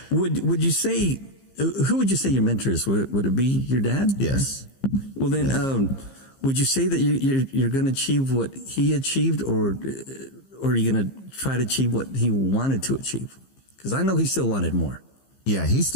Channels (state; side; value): late; right; 15 ms